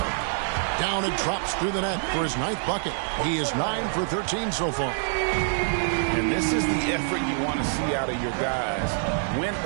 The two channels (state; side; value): silent; left; 59 dB below the other